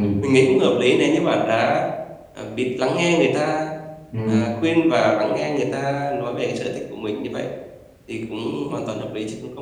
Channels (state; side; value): identical; both; correlation 1.00